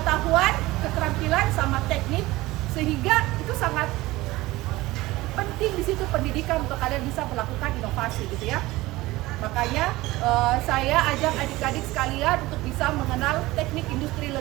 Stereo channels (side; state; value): left; quieter; 19.1 dB